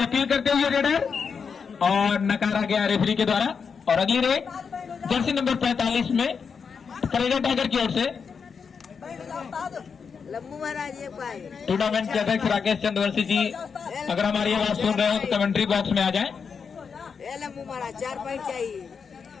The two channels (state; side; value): quieter; right; 6.0 dB